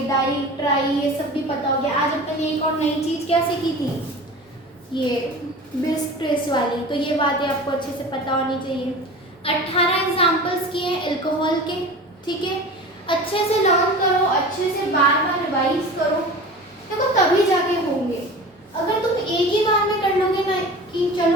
डाई ट्राई ये सब भी पता हो गया। आज अपन ने एक और नई चीज क्या सीखी थी, ये बिस ट्रेस वाली। तो ये बातें आपको अच्छे से पता होनी चाहिए। 18 एग्जाम्पल्स किए हैं अल्कोहल के। ठीक है, अच्छे से लर्न करो, अच्छे से बार बार रिवाइज करो, देखो तभी जाके होंगे। अगर तुम एक ही बार में कर लोगे ना कि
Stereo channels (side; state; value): both; normal; correlation 0.36